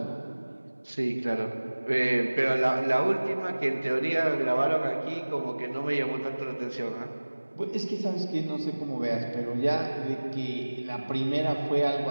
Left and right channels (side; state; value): both; inverted; correlation -1.00